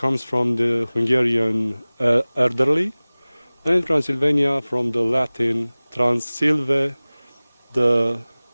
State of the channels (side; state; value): both; inverted; correlation -0.99